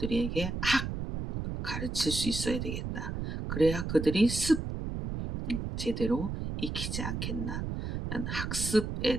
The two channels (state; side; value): noise; right; rumble, 4 dB below the sound